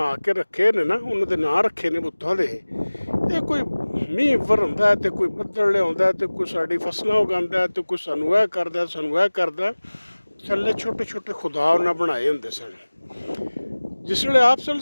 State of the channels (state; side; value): inverted; both; correlation -1.00